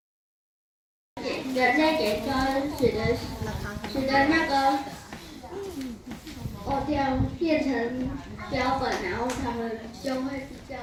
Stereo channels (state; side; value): identical; both; correlation 1.00